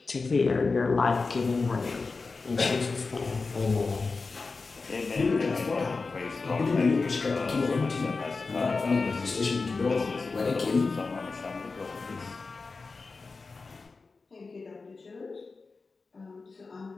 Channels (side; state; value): right; quieter; 4.1 dB